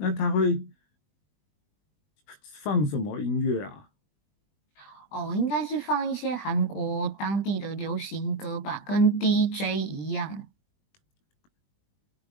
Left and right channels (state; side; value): late; right; 20 ms